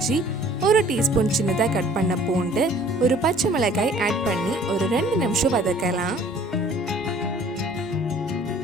1 டீஸ்பூன் சின்னதாக கட் பண்ண பூண்டு, ஒரு பச்சை மிளகாய் ஆட் பண்ணி ஒரு 2 நிமிஷம் வதக்கலாம்.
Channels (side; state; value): both; normal; correlation 0.53